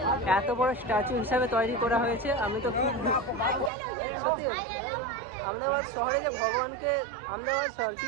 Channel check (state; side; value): drops out; left; at 3.7 s